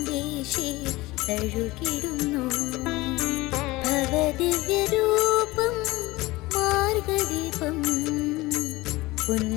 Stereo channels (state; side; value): quieter; right; 20.3 dB